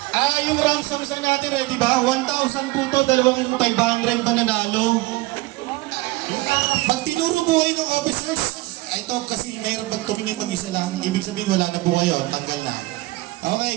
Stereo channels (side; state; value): left; quieter; 20.4 dB